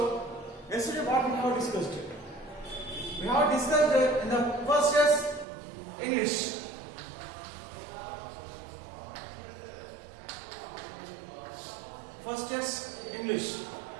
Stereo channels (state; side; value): drops out; left; at 5.5 s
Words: yesterday what we have discussed? We have discussed in the first test English. First test English.